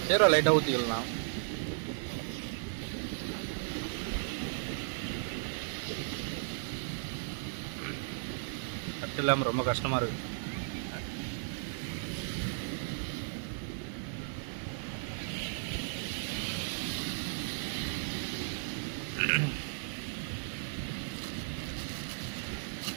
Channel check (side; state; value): left; silent; digital silence